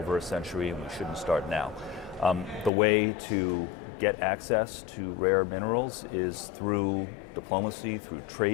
a century, and we shouldn't start now. The way to get access to rare minerals is through diplomacy, through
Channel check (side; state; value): right; drops out; at 2.7 s